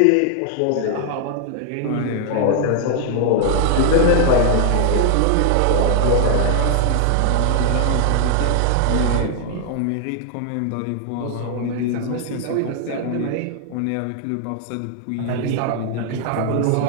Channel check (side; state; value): both; different; correlation 0.00